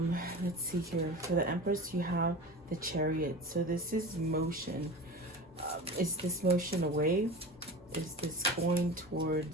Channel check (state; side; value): normal; both; correlation 0.33